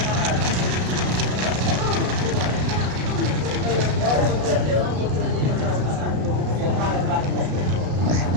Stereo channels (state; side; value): late; left; 33 ms